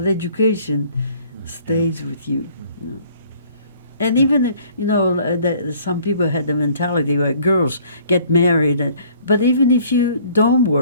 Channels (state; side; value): inverted; both; correlation -0.57